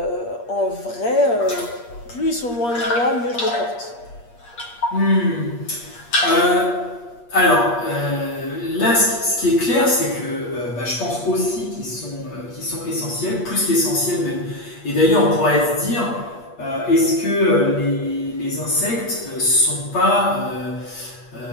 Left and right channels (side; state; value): right; late; 8.5 ms